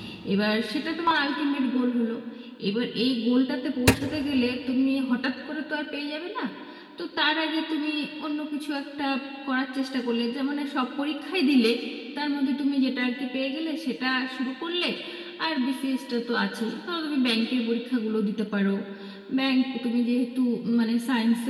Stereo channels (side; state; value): both; identical; correlation 1.00